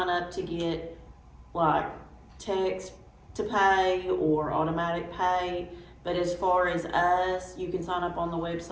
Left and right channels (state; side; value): identical; both; correlation 1.00